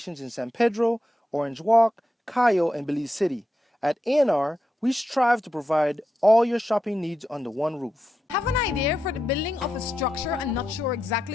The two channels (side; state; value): both; normal; correlation 0.87